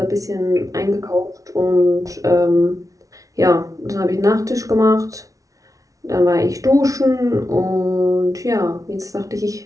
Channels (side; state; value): left; late; 0.17 ms